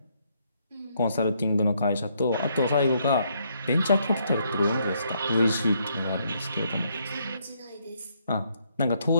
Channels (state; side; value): inverted; both; correlation -0.72